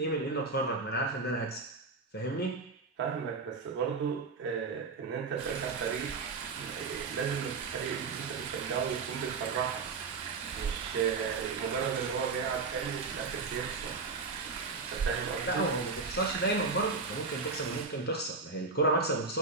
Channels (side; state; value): left; quieter; 4.4 dB